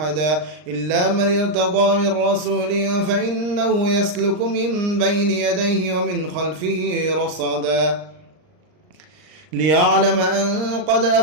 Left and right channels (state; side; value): late; left; 39 ms